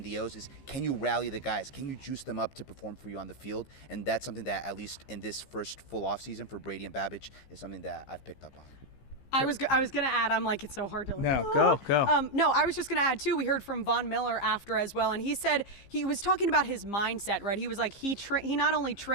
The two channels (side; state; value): right; late; 15 ms